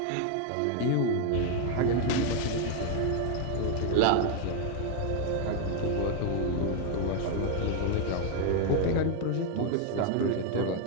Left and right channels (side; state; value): both; different; correlation 0.00